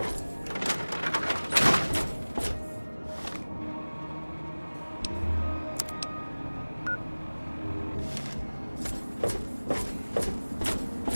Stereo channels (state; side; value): inverted; both; correlation -1.00